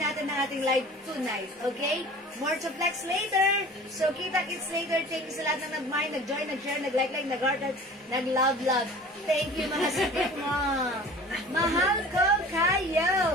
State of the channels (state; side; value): normal; both; correlation 0.43